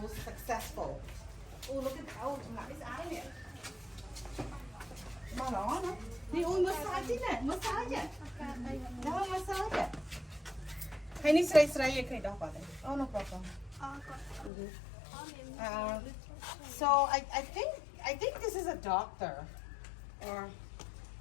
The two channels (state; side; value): drops out; right; at 14.5 s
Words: successful. Oh, look at it's out of here. Mà đó nó. Đi ôi massage nè, massage. Đó massage. Hay ni sray cái đó vào đây. Oh, no problem. So I think this is a doctor, or